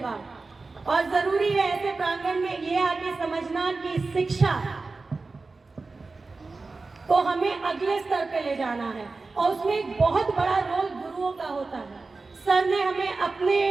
और जरूरी है ऐसे प्रांगण में ये आके समझना कि शिक्षा को हमें अगले स्तर पे ले जाना है, और उसमें एक बहुत बड़ा रोल गुरुओं का होता है। सर ने हमें अपने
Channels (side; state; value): left; quieter; 3.8 dB